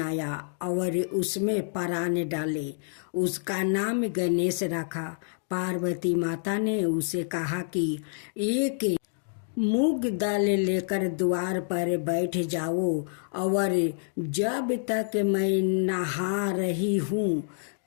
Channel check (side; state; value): right; silent; digital silence